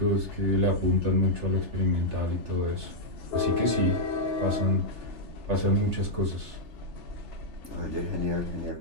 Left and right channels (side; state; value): left; late; 3.4 ms